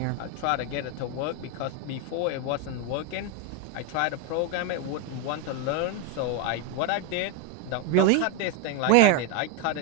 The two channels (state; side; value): different; both; correlation 0.01